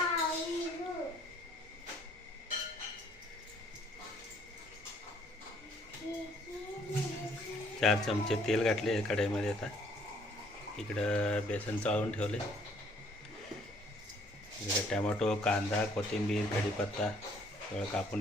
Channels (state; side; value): normal; both; correlation 0.62